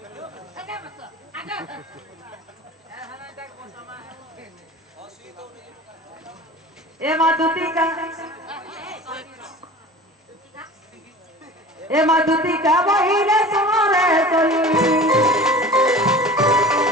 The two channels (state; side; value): normal; both; correlation 0.39